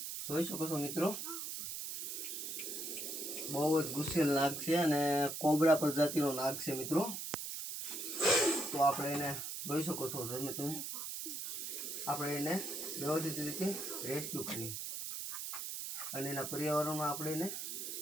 જોઈ શકો છો મિત્રો, બહુ જ ગુસ્સેલ નાગ છે અને કોબરા પ્રજાતિનો નાગ છે મિત્રો. તો આપણે એને જોઈ શકો છો તમે આપણે એને વ્યવસ્થિત રીતે રેસ્ક્યુ કરી અને એના પર્યાવરણમાં આપણે એને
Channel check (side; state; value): right; noise; hiss, 5 dB below the sound